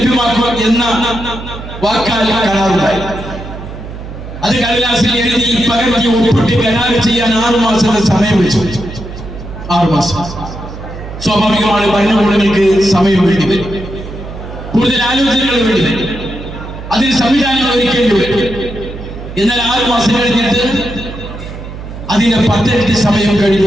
എന്ന വാക്കാൽ കരാറുണ്ടായി. അത് കടലാസിൽ എഴുതി പകർത്തി ഒപ്പിട്ട് കരാർ ചെയ്യാൻ 6 മാസത്തെ സമയം വെച്ചു. 6 മാസം. സ്വാഭാവികമാണ്, ഭരണകൂടങ്ങൾക്ക് സമയം വേണ്ടി വരും, കൂടുതൽ ആലോചനകൾ വേണ്ടി വരും, അതിന് സംവിധാനങ്ങൾ ഒരുക്കേണ്ടി വരും. എന്നാൽ 6 മാസം കഴിഞ്ഞിട്ട് അതിന്റെ 10 ഇരട്ടി സമയം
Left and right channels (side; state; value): right; noise; hum, 11 dB below the sound